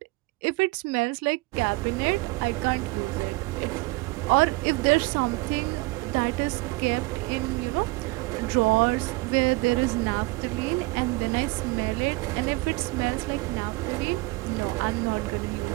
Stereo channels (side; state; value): left; quieter; 23.4 dB